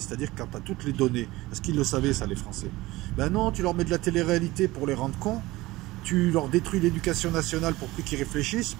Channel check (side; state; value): left; quieter; 19.2 dB